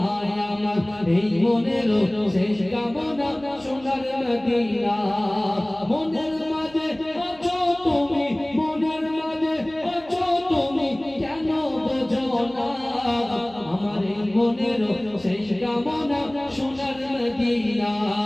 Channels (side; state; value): right; noise; hum, 23 dB below the sound